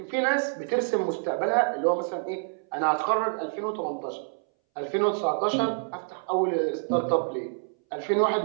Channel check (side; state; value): left; silent; 60 dB below the other